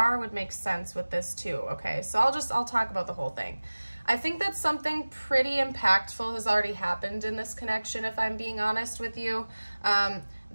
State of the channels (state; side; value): inverted; both; correlation -1.00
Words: would make sense with this too. Okay, so I'll talk about the whole thing. I think that something pretty impactful has already happened in this connection, if I'm being honest with you,